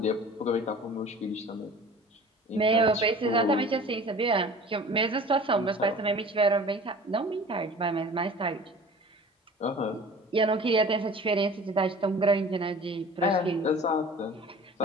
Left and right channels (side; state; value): both; normal; correlation 0.43